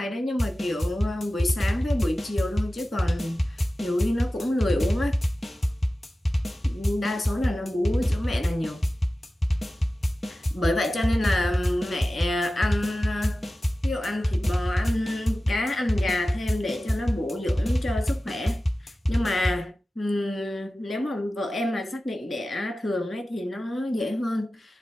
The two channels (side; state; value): both; normal; correlation 0.95